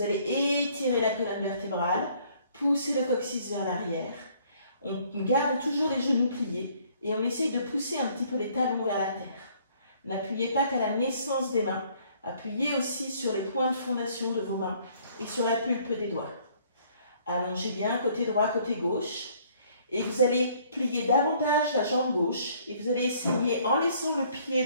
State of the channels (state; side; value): inverted; both; correlation -0.62